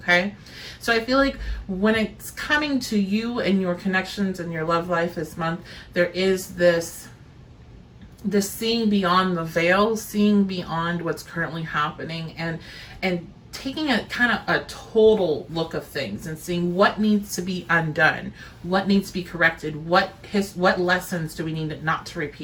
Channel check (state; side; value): identical; both; correlation 1.00